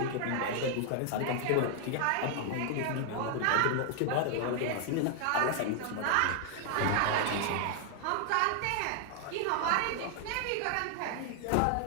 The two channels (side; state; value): both; different; correlation 0.00